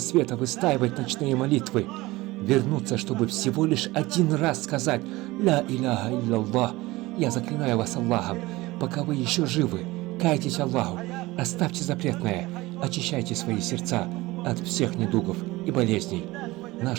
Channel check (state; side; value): quieter; left; 20.1 dB